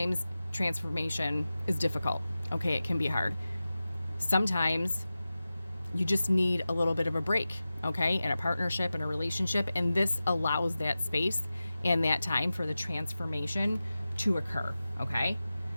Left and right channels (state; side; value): inverted; both; correlation -0.95